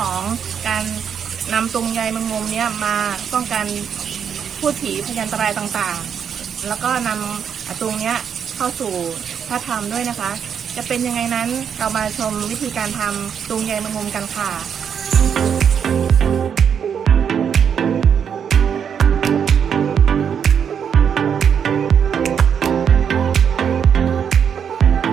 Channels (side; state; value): left; quieter; 7.7 dB